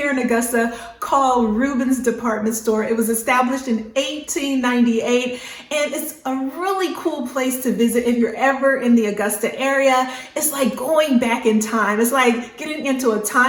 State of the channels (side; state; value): both; identical; correlation 1.00